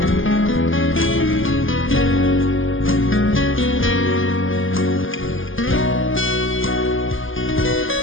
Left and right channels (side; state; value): right; late; 0.58 ms